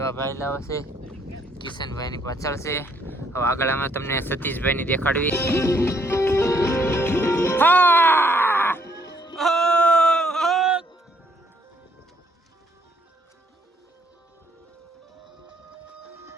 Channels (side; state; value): both; normal; correlation 0.69